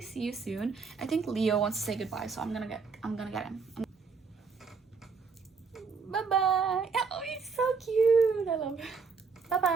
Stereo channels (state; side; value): quieter; left; 5.1 dB